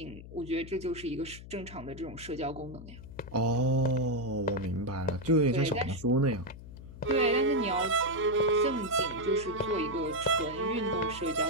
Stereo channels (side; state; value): left; noise; hum, 15 dB below the sound